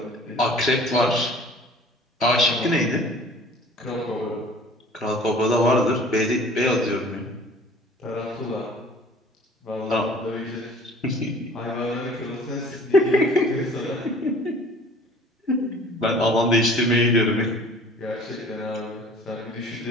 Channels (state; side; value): normal; both; correlation 0.48